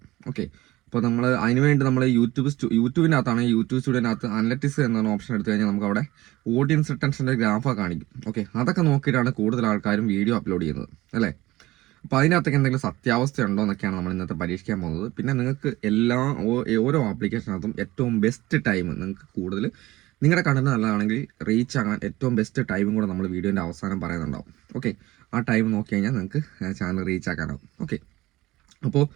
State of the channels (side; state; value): left; quieter; 18.1 dB